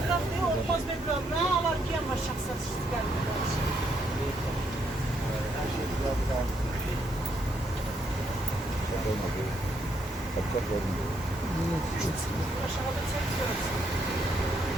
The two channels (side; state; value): both; normal; correlation 0.75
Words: Olmaz bir problem, alar ki ama şahsat aşağıda çekiyoruz.